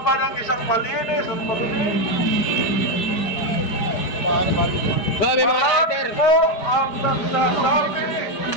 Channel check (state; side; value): late; right; 4.9 ms